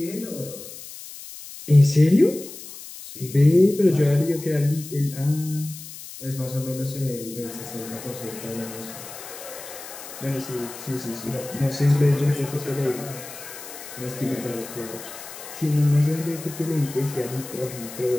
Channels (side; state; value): left; noise; hiss, 13 dB below the sound